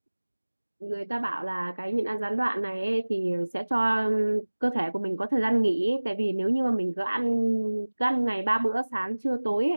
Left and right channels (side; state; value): both; inverted; correlation -1.00